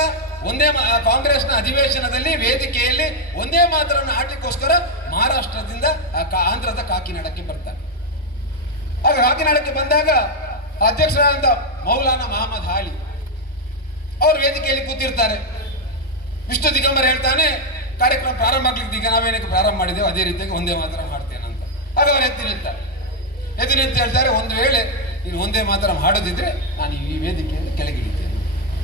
ಒಂದೇ ಕಾಂಗ್ರೆಸ್ನ ಅಧಿವೇಶನದಲ್ಲಿ ವೇದಿಕೆಯಲ್ಲಿ ಒಂದೇ ಮಾತರನ್ನು ಆಡ್ಲಿಕ್ಕೋಸ್ಕರ ಮಹಾರಾಷ್ಟ್ರದಿಂದ ಆಂಧ್ರದ ಕಾಕಿನಾಡಕ್ಕೆ ಬರ್ತಾನೆ. ಆಗ ಕಾಕಿನಾಡಕ್ಕೆ ಬಂದಾಗ ಅಧ್ಯಕ್ಷರಾದಂಥ ಮೌಲಾನಾ ಮಹಮ್ಮದ್ ಹಾಲಿ ಅವರು ವೇದಿಕೆಯಲ್ಲಿ ಕೂತಿರ್ತಾರೆ. ವಿಷ್ಣು ದಿಗಂಬರ್ ಹೇಳ್ತಾನೆ, ಕಾರ್ಯಕ್ರಮ ಪ್ರಾರಂಭ ಆಗ್ಲಿಕ್ಕೆ ಈಗ ನಾವೇನಕ್ಕೆ ಪ್ರಾರಂಭ ಮಾಡಿದ್ದೇವೆ ಅದೇ ರೀತಿಯಾಗಿ ಒಂದೇ ಮಾತ್ರ ಮಾಡ್ತೇನೆ ಅಂತ. ಆಗ ಅವರು ಎದ್ದು ನಿಂತು ಹೇಳ್ತಾರೆ, ಒಂದು ವೇಳೆ ನೀನು ಒಂದೇ ಮಾತ್ರ ಮಾಡೋದಿದ್ರೆ ನಾನು ಈ ವೇದಿಕೆಯಲ್ಲಿ ಕೆಳಗಿಳಿದ್ದೇನೆ.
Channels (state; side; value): normal; both; correlation 0.03